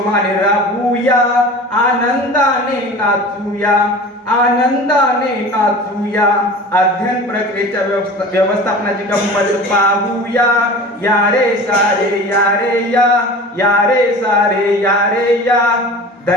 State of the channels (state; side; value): normal; both; correlation 0.37